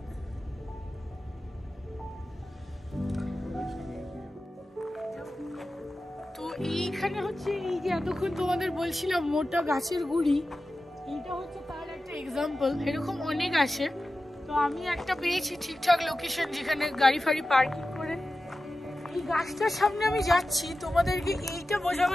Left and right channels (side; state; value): both; normal; correlation 0.94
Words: তো এইখানে হচ্ছে এই যে এতক্ষণ তোমাদের বলছিলাম মোটা গাছের গুড়ি, এইটা হচ্ছে তার একটা এক্সাম্পল। এরকম অনেক আছে। তো আমি একটা পেয়েছি ঠিকঠাক লোকেশন যেখানে গাড়ি ফাড়ি পার্কিং করে। এই গাছটার সামনে আমি যাচ্ছি তোমাদেরকে এইটা